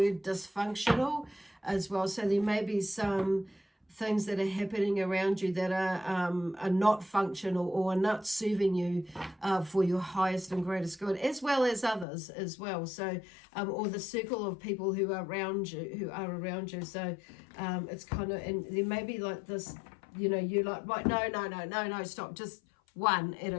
dysfunctional as well, so there may be some things that are happening around you that are not functional, or are not serving you for your highest and greatest good, as well as others as well. So or the circle of people who are around you, so it's kind of, and there may be like this, you're like, right, no, stop, just one at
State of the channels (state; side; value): drops out; right; at 12.1 s